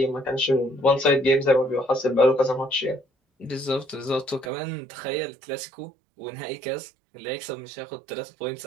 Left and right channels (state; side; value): drops out; left; at 4.5 s